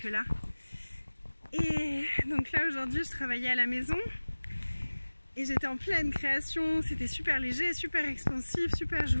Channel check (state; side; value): inverted; both; correlation -1.00